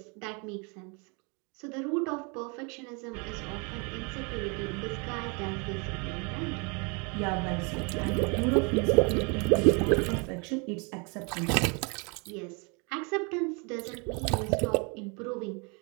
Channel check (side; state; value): left; quieter; 32.9 dB